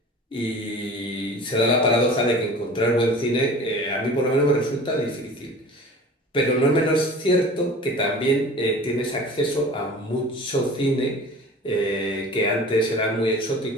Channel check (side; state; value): both; normal; correlation 0.40